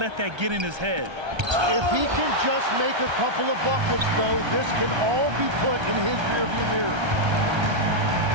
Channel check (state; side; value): late; left; 1.3 ms